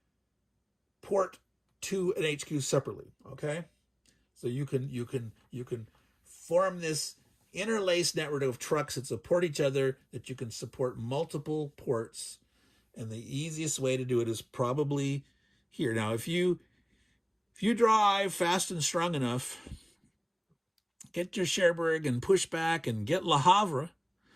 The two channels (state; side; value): identical; both; correlation 1.00